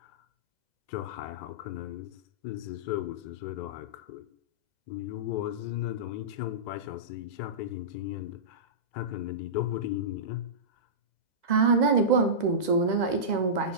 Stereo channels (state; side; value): late; right; 2.0 ms